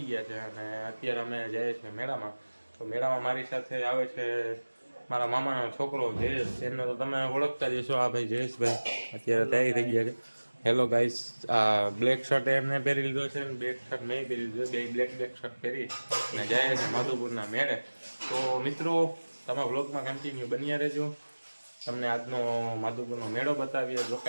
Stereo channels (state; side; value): inverted; both; correlation -1.00